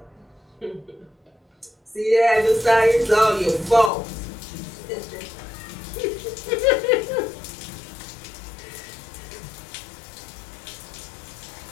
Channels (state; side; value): drops out; right; at 3.9 s